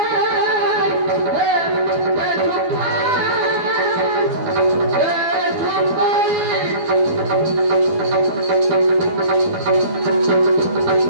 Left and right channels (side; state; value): left; late; 12 ms